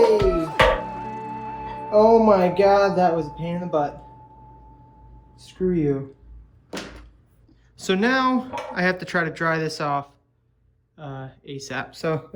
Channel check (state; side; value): identical; both; correlation 1.00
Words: Oh my god, that was a pain in the butt. Screw you. So now I have to try to dry this off ASAP. So